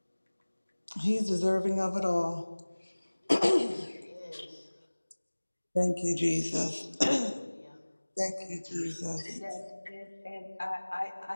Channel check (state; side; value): inverted; both; correlation -1.00